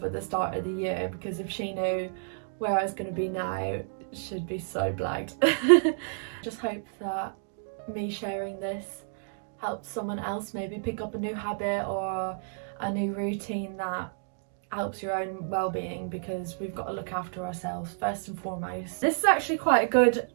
at the start of the year, because if she knew where I was going to be now, she'd be so blagged. Just hope that me sharing this helps someone else maybe pick up a new habit or a new routine that helps your own well-being, because we've got to look after ourselves first and foremost. This is actually quite a good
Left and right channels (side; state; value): left; silent; digital silence